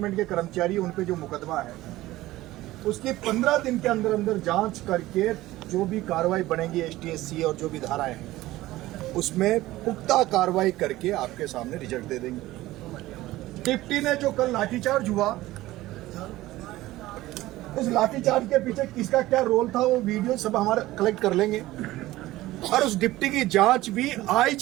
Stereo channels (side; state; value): left; quieter; 17.0 dB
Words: के कर्मचारी उन पे जो मुकदमा है उसकी 15 दिन के अंदर अंदर जांच करके जो भी कार्रवाई बनेगी एसटीएससी और जो भी धाराएं हैं उसमें पुख्ता कार्रवाई करके आपके सामने रिजल्ट दे देंगे। डिप्टी ने जो कल लाठीचार्ज हुआ, उस लाठीचार्ज के पीछे किसका क्या रोल था वो वीडियो सब हमारे कलेक्ट कर लेंगे और उस डिप्टी की जांच भी